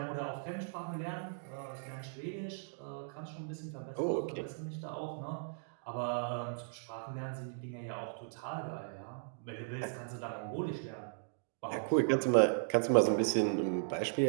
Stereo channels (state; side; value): silent; left; digital silence